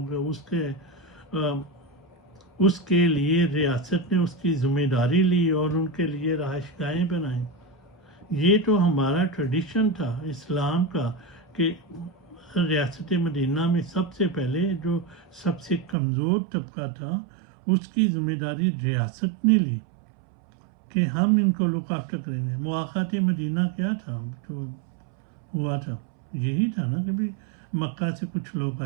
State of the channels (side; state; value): left; drops out; at 16.0 s